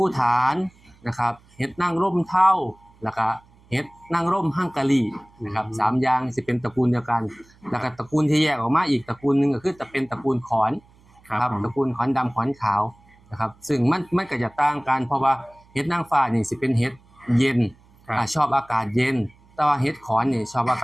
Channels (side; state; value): right; noise; hum, 29 dB below the sound